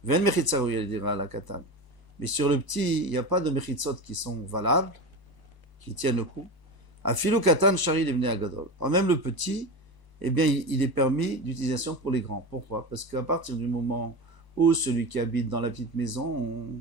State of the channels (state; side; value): late; left; 1.0 ms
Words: Ven mechitza ou yale dire à la katan. Mais sur le petit, il n'y a pas de mechitzot qui sont valables, qui tiennent le coup. Afilu katan shari devne agadol. Alors même le petit, eh bien, il est permis d'utilisation pour les grands. Pourquoi? Parce qu'à partir du moment où celui qui habite dans la petite maison,